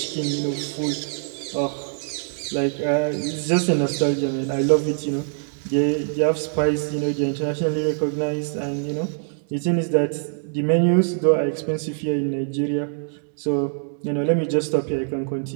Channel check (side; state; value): left; silent; digital silence